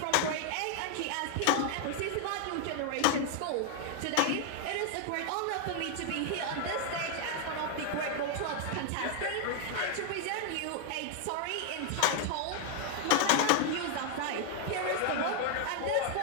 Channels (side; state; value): both; different; correlation 0.00